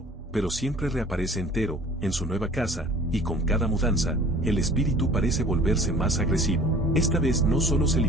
pero siempre reaparece entero, en su nueva casa, y con cada mudanza, el espíritu parece volverse más agresivo. Esta vez no solo se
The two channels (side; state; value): both; normal; correlation 0.47